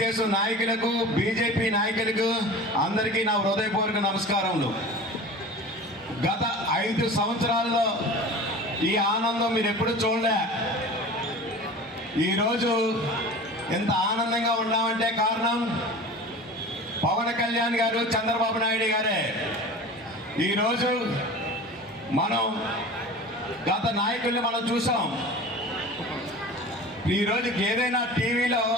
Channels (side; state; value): both; normal; correlation 0.37